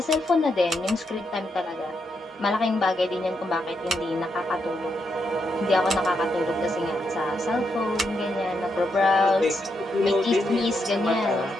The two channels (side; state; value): both; normal; correlation 0.81